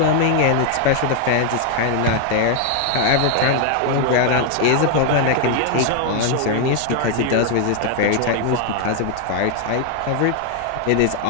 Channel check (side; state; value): both; different; correlation 0.00